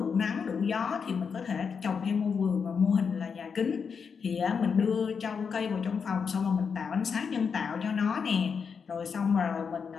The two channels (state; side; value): quieter; right; 6.1 dB